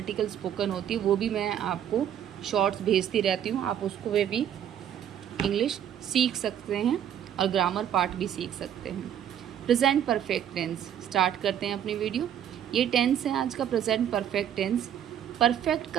स्पोकन होती है वो भी मैं आपको शॉर्ट्स भेजती रहती हूँ। आप उसको वे भी इंग्लिश सीख सकते हैं और ग्रामर पार्ट भी सीख सकते हैं। प्रेजेंट परफेक्ट टेंस स्टार्ट करते हैं अपनी वीडियो। ये टेंस है आज का प्रेजेंट परफेक्ट टेंस। परफेक्ट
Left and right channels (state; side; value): quieter; left; 9.8 dB